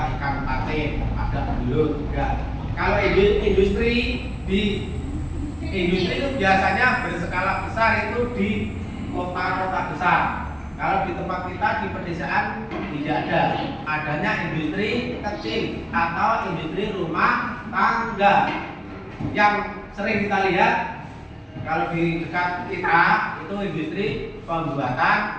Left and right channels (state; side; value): identical; both; correlation 1.00